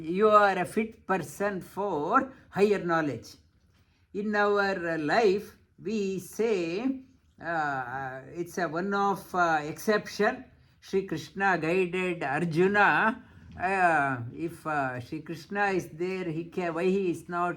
you are a fit person for higher knowledge. In our life, we say it's a one of exception. Shri Krishna guided Arjuna. If Shri Krishna is there, why he is not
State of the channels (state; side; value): identical; both; correlation 1.00